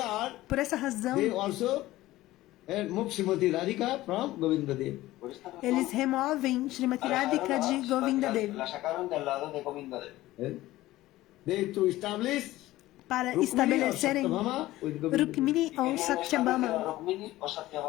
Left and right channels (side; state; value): right; quieter; 16.6 dB